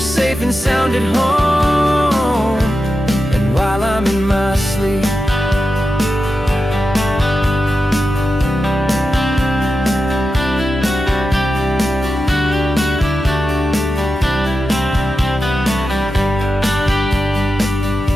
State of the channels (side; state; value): both; normal; correlation 0.91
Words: and sound at home, and while I'm in my sleep.